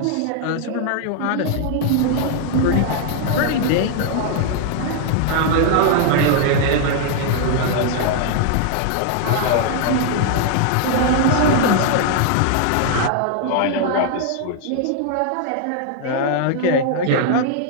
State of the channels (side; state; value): both; different; correlation 0.00